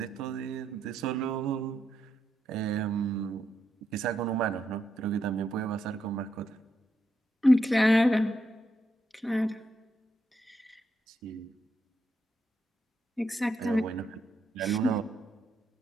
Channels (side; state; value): both; normal; correlation 0.81